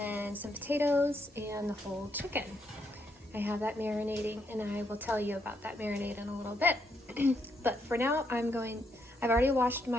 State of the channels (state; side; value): normal; both; correlation 0.77